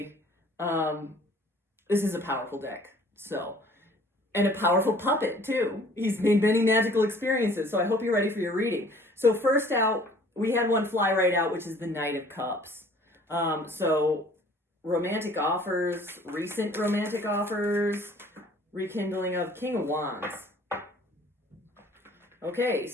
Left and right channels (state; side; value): normal; both; correlation 0.53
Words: this is a powerful deck, so, and a powerful puppet too. He's made many magical experiences, so I hope you're ready for your reading. So first out, we had one fly right out, which is the Knight of Cups. So romantic offers, recent romantic offers, rekindling of King of Wands. Okay,